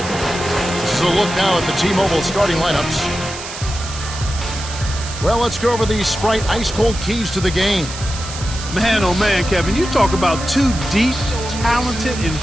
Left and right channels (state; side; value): noise; right; hiss, 11 dB below the sound